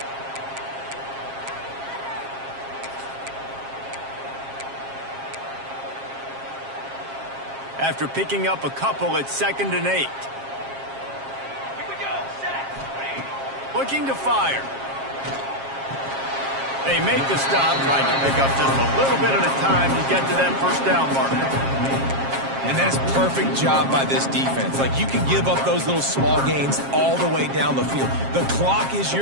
After picking up a couple, it's 2nd and 8. Here we go. Set. Looking to fire. They make the stop, trying to pick up just a little bit at a time to get to that first down marker. And that is perfect job by this defense. Like, you can give up those little small gains all the way down the field. The clock is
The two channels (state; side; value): late; left; 7.4 ms